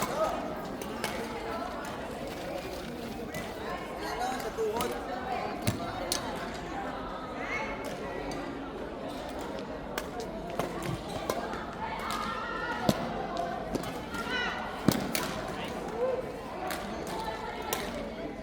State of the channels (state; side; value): identical; both; correlation 1.00